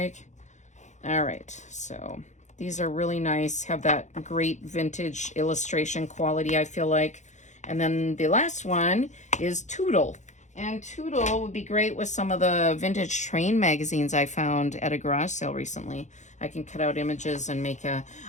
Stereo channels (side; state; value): right; late; 0.34 ms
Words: All right, so these are really nice, have that great vintage illustration quality, I feel like. And then the last one is Toodle. And Toodle would be great with some of the vintage train magazines I found at a garage sale recently. I can cut out images and make